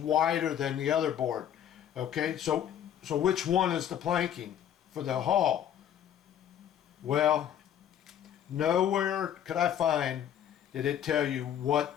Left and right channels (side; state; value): right; quieter; 10.0 dB